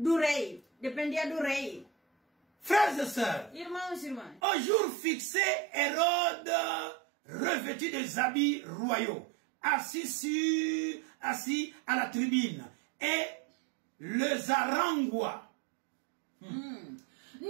rei. Dependia do rei. Frères et sœurs, Irmãos e irmãs, au jour fixé, Hérode, revêtu des habits royaux, assis à la tribune, et le zarangua.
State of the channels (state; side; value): drops out; left; at 4.4 s